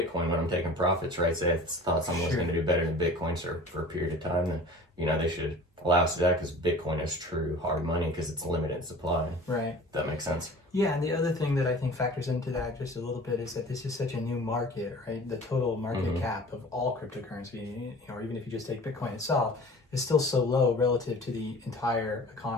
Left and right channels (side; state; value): both; normal; correlation 0.43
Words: when I'm taking profits, right? Say I thought someone was going to do better than Bitcoin for a period of time, then, you know, they should allow us to do that, because Bitcoin is true hard money because it's limited supply. Right. That makes sense. Yeah, and the other thing that I think factors into that just a little bit is that this is such a new market, right? The total market cap of all cryptocurrency, you know, or even if you just take Bitcoin itself, is still so low relative to the entire